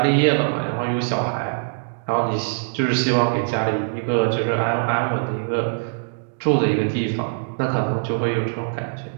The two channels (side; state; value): left; silent; digital silence